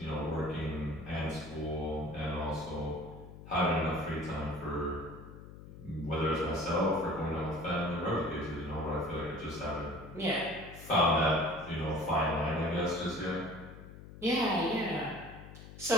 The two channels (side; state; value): left; noise; hum, 15 dB below the sound